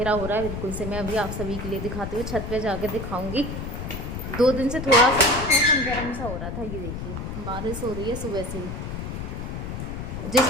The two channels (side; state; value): left; noise; rumble, 6 dB below the sound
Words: हो रहा है बिल्कुल से। मैं अभी आप सभी के लिए दिखाती हूँ, छत पे जाके दिखाऊंगी। 2 दिन से थोड़ा सा मौसम गर्म सा हो रहा था। ये देखिए बारिश हो रही है सुबह से ही।